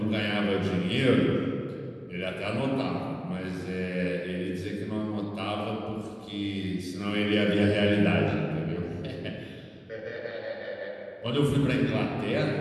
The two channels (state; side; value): identical; both; correlation 1.00